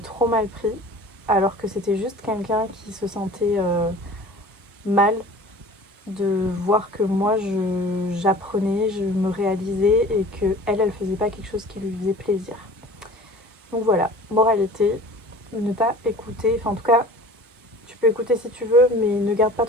mal pris. Alors que c'était juste quelqu'un qui se sentait mal de voir que moi, j'apprenais, je me réalisais et que elle faisait pas quelque chose qui lui faisait plaisir. Donc voilà, moralité, ne pas écouter, enfin en tout cas, tu peux écouter si tu veux, mais ne garde pas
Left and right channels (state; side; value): normal; both; correlation 0.43